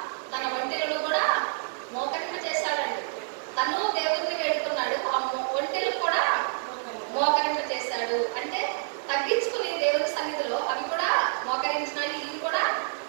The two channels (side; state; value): left; silent; 59 dB below the other